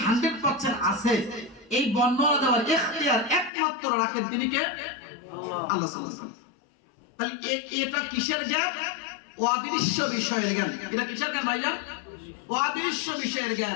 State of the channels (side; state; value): right; drops out; at 3.5 s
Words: 100% আছে, এই বর্ণনা দেওয়ার ইখতিয়ার একমাত্র রাখেন তিনি কে? আল্লাহ সুবহানাহু ওয়া তাআলা। তাহলে এটা কিসের জ্ঞান? অদৃশ্য বিষয়ের জ্ঞান। এটা কিসের জ্ঞান ভাইজান? অদৃশ্য বিষয়ের